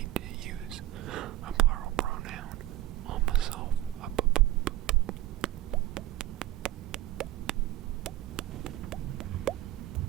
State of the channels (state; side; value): quieter; left; 15.5 dB